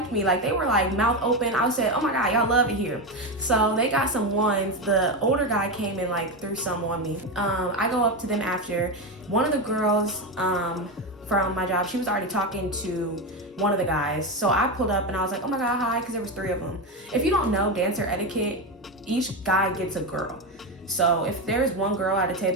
me. Like, they were like mouth open. I said, oh my God, y'all love it here. So they got some ones. The older guy came and like threw some on me. I go up to them after. One of the girls from my job, she was already talking to one of the guys. So I pulled up and I was like, oh my God, hi, because there was 3 of them. If you don't know dancer etiquette, each guy gets a girl. So if there's one girl at a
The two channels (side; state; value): both; normal; correlation 0.14